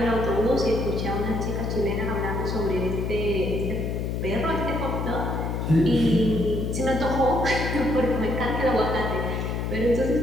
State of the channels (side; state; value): left; noise; hum, 2 dB below the sound